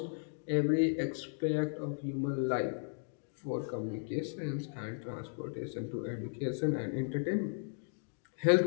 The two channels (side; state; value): right; silent; digital silence